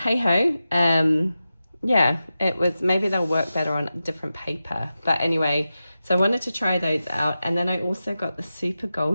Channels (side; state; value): both; inverted; correlation -0.92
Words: ho, yeah, it was, maybe they'll work better on different paper. But anyway, so I wanted to try those out. And then I also got the super